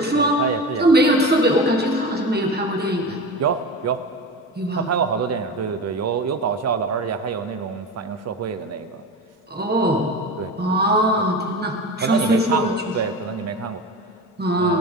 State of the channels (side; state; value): both; normal; correlation 0.28